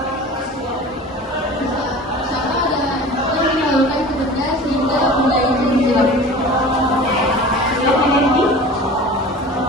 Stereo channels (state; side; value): normal; both; correlation 0.39